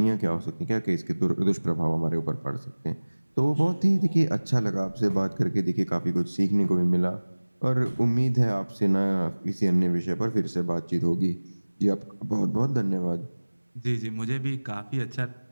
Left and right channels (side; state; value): both; inverted; correlation -1.00